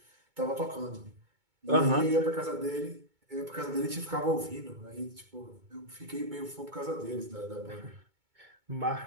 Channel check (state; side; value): late; left; 2.2 ms